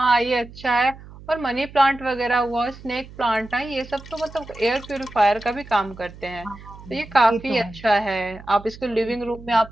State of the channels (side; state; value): right; noise; hum, 18 dB below the sound